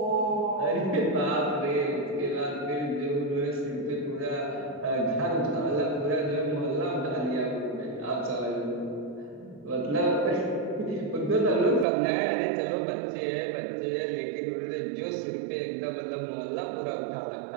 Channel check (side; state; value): left; drops out; at 11.9 s